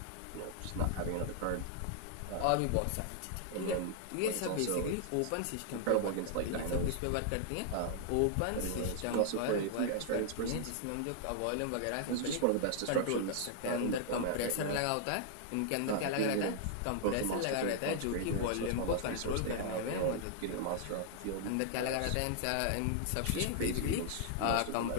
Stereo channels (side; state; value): both; different; correlation 0.00